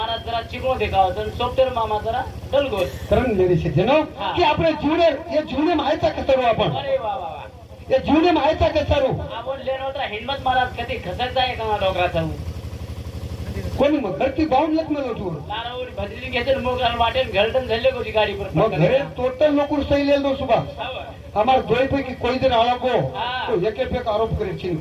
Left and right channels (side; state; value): both; identical; correlation 1.00